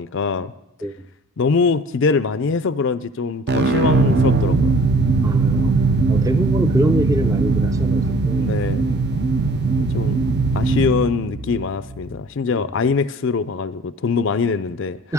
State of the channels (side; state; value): both; normal; correlation 0.50